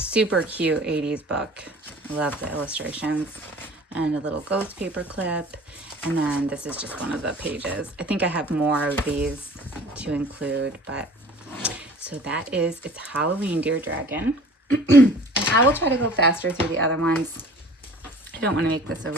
cute 80s book. I love the illustrations. And a little ghost paper clip. And then this is just one of the pages. I think I have more of these to include, but so that is, it's Halloween Dear Dragon. And I will try to go faster through the other ones. I don't want to make this a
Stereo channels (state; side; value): normal; both; correlation 0.46